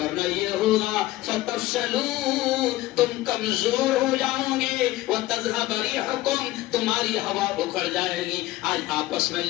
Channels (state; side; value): quieter; right; 17.0 dB